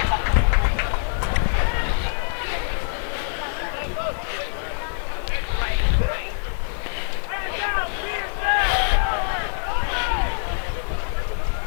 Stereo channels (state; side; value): silent; right; digital silence